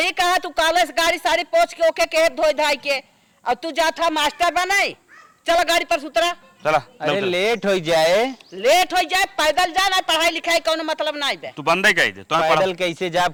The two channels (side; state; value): both; identical; correlation 1.00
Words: कहा। तू कॉलेज गाड़ी सारी पोछ के ओके के धोई धाई के और तू जाता मास्टर बनाई। चला गाड़ी पर सुतरा। चला। अरे लेट हो जाए, लेट हो जाए पैदल जा ना, पढ़ाई लिखाई कोनो मतलब नहीं बे। तू बंदे गई थे तो पैदल कैसे जाब,